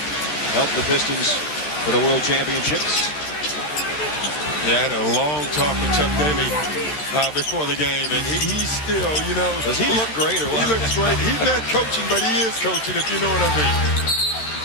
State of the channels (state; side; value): late; right; 13 ms